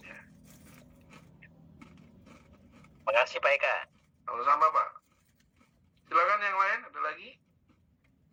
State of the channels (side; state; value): both; identical; correlation 1.00